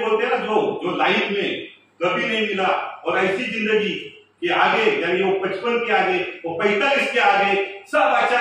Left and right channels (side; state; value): both; identical; correlation 1.00